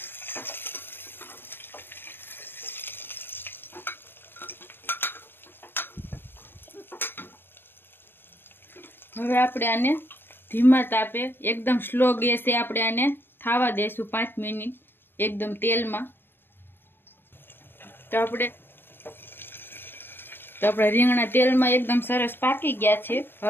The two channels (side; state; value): right; late; 0.10 ms